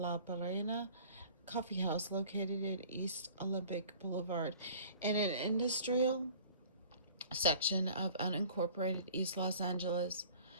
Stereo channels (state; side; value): inverted; both; correlation -0.48